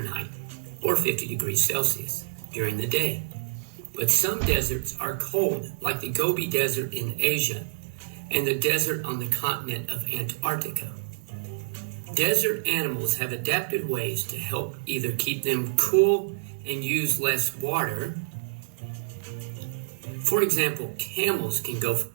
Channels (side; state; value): left; silent; 60 dB below the other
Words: or 50 degrees Celsius during the day. But some deserts are cold, like the Gobi Desert in Asia and the desert on the continent of Antarctica. Desert animals have adapted ways to help either keep them cool and use less water. For example, camels can go.